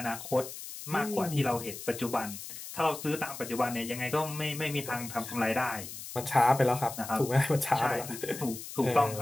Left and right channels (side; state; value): left; noise; hiss, 11 dB below the sound